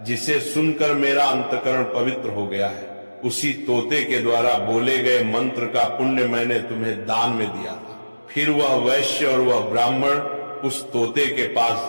जिसे सुनकर मेरा अंतकरण पवित्र हो गया है। उसी तोते के द्वारा बोले गए मंत्र का पुण्य मैंने तुम्हें दान में दिया था। फिर वह वैश्य और वह ब्राह्मण उस तोते के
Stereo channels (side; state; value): both; inverted; correlation -1.00